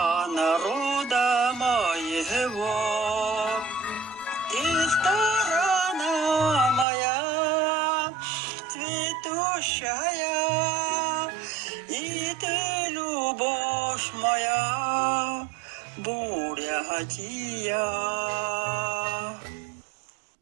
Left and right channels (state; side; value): drops out; left; at 6.9 s